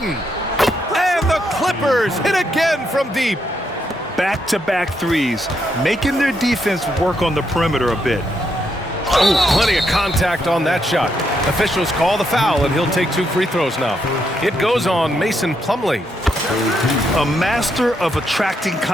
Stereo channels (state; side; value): normal; both; correlation 0.78